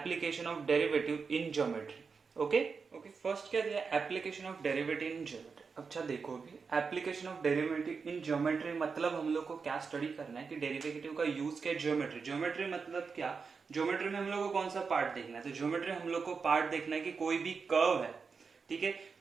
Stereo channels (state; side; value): quieter; left; 5.2 dB